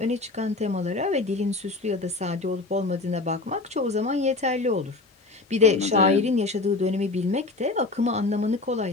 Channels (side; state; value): right; quieter; 3.4 dB